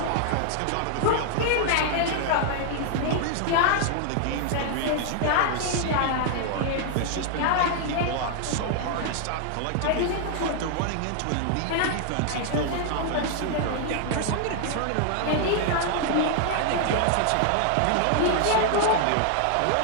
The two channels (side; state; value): both; different; correlation 0.00